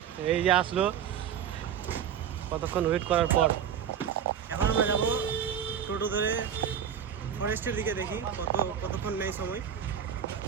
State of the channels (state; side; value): quieter; left; 8.5 dB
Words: এই যে আসলো, কতক্ষণ ওয়েট করার পর। এখন আমরা যাব টোটো ধরে ফরেস্টের দিকে, দেখি কতক্ষণ নেই সময়।